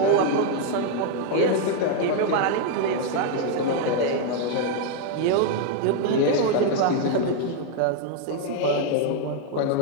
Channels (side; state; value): both; different; correlation 0.00